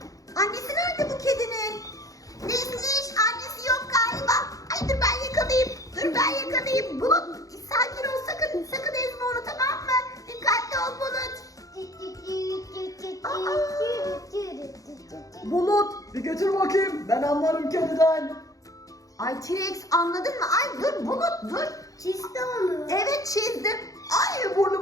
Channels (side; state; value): right; late; 0.17 ms